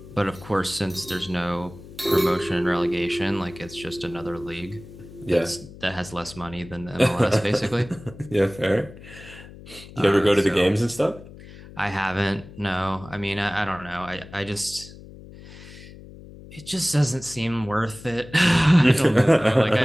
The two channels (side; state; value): left; noise; hum, 17 dB below the sound